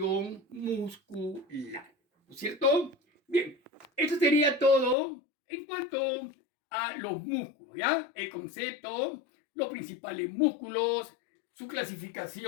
muscular. ¿No es cierto? Bien, eso sería todo en cuanto a los músculos, ¿ya? El concepto, los principales músculos, su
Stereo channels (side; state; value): right; drops out; at 5.0 s